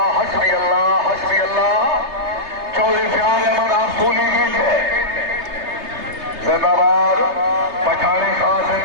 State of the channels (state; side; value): late; left; 3.3 ms